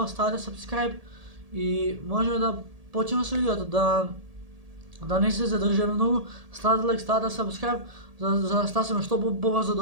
ставате subscribe и можеме да почнеме со видеото, да не се задржаме многу, ставате лайк, ставате subscribe, за да стасаме што побрзо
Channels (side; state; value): left; late; 1.8 ms